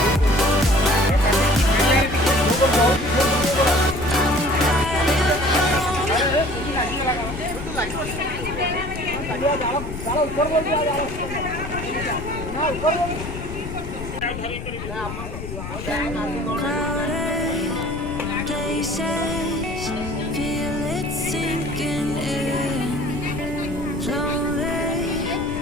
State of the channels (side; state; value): left; noise; rumble, 8 dB below the sound